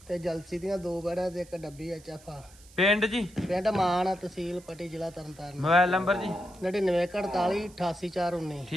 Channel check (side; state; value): right; noise; hiss, 24 dB below the sound